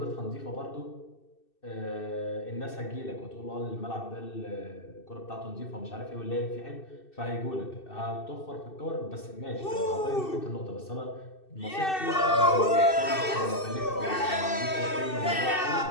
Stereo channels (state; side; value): late; right; 2.6 ms